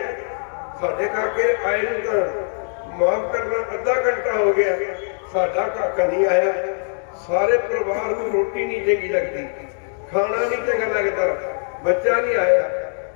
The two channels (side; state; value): right; silent; 64 dB below the other